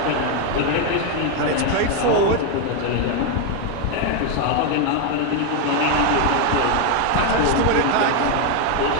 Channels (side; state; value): both; different; correlation 0.02